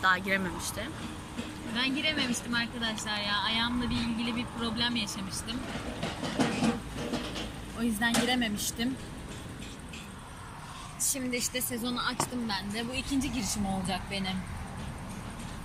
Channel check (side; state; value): both; identical; correlation 1.00